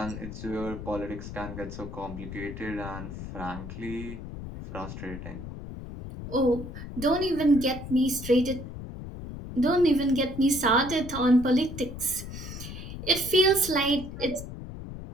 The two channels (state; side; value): noise; left; rumble, 10 dB below the sound